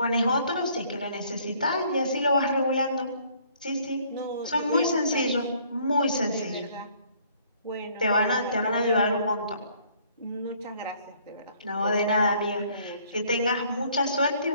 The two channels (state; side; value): inverted; both; correlation -0.61